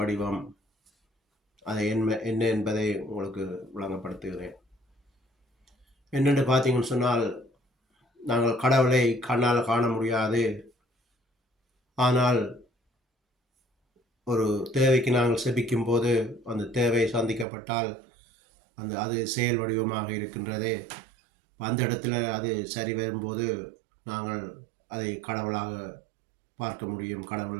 அதை என்ன என்பதை உங்களுக்கு விளங்கப்படுத்துகிறேன். என்னென்று பார்த்தீங்கன்னு சொன்னால், நாங்கள் கடவுளை கண்ணால் காண முடியாது. ஆனால் ஒரு தேவைக்கு நாங்கள் செபிக்கும் போது அந்த தேவை சந்திக்கப்பட்டால் அது செயல் வடிவமாக இருக்கின்றது. அந்த இடத்துல அது சரி வரும்போது நாங்கள் அதை கடவுளாக பார்க்க முடியும்.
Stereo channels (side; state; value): left; drops out; at 17.4 s